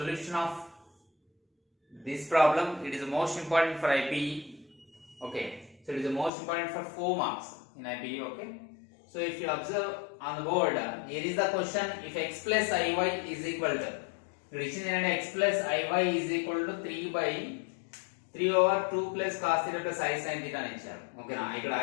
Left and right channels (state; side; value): drops out; right; at 6.3 s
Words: of this problem. It is the most important for IPE. Okay, so it is the most important for 4 marks in IPE. Okay, so if you observe on the board, here is the question: if x plus iy is equal to, x plus iy is equal to 3 by 3 over 2 plus cos theta plus I sin theta అని ఇచ్చారు. ఓకేనా, ఇక్కడ